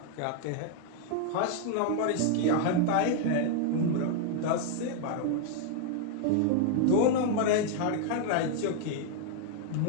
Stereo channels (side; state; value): both; different; correlation 0.00